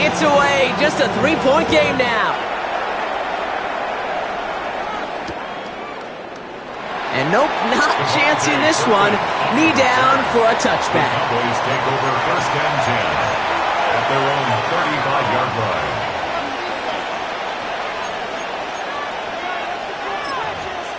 it's away. Just a 3-point game now. And nope, not chancing this one. Knee down for a touchback. Cowboys take over 1st and 10 at their own 35-yard line.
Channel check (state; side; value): identical; both; correlation 1.00